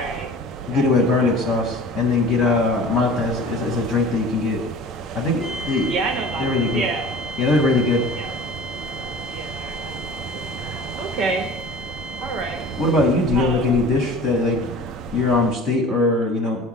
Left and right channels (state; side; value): normal; both; correlation 0.42